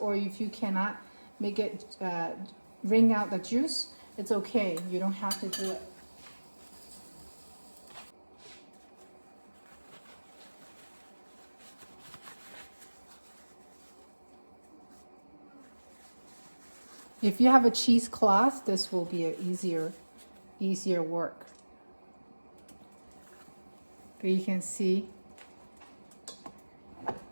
if you cannot make it wring out the juice, it's okay. You don't have to do it. If you have a cheesecloth, this will be an easier work. But you can see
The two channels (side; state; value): both; inverted; correlation -1.00